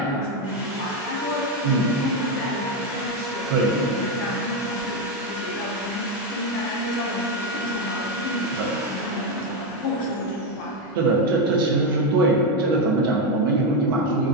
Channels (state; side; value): normal; both; correlation 0.07